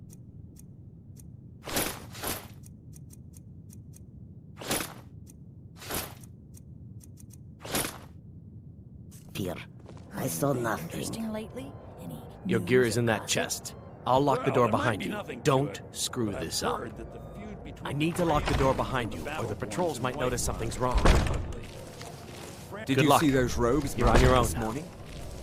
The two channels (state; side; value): identical; both; correlation 1.00